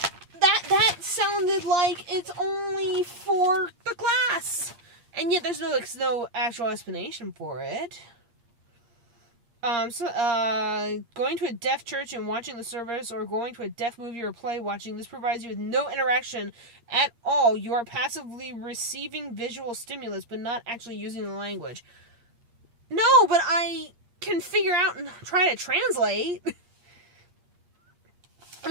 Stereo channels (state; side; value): late; left; 8.5 ms